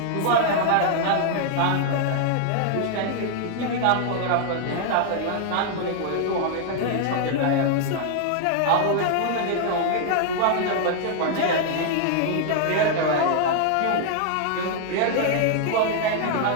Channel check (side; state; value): both; different; correlation 0.00